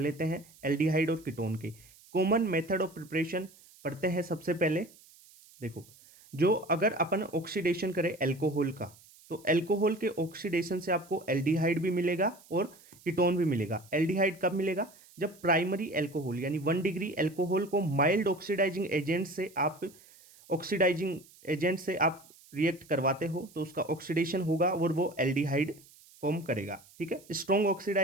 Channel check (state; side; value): noise; right; hiss, 25 dB below the sound